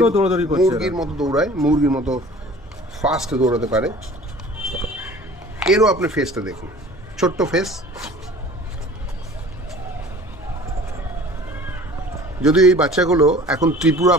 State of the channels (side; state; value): both; normal; correlation 0.46